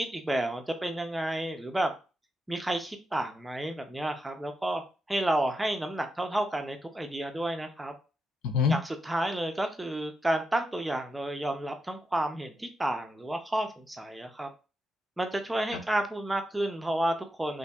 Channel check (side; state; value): both; normal; correlation 0.86